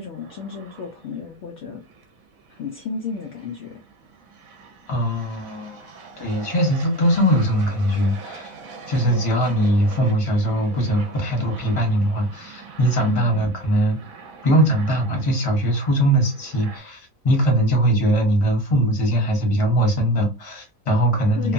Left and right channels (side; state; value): both; normal; correlation 0.34